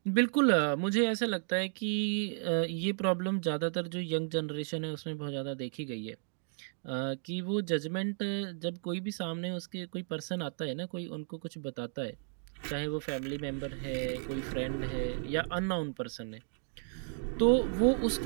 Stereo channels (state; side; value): silent; left; 55 dB below the other